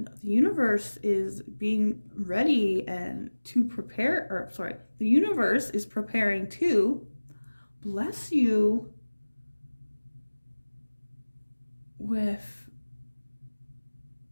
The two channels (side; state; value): both; inverted; correlation -1.00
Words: the universe is being ready and to prepare, the universe is preparing to bless you with